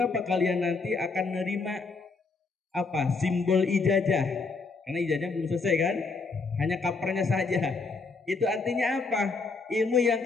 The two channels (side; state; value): right; quieter; 4.2 dB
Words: kalian nanti akan menerima apa? Simbol ijazah. Karena ijazah belum selesai kan? Hanya kapernya saja. Itu artinya apa? Ilmu yang